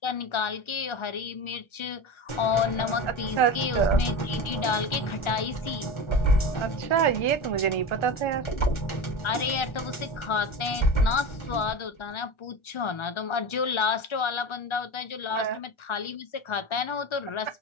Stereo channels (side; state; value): right; late; 1.4 ms